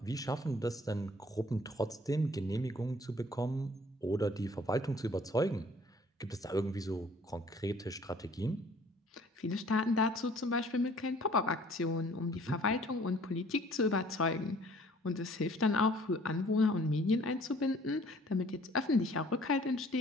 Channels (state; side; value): normal; both; correlation 0.55